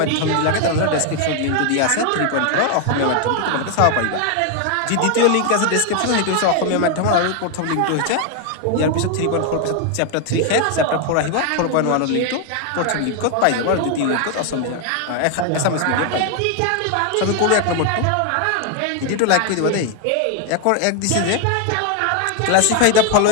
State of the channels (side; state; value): both; different; correlation 0.00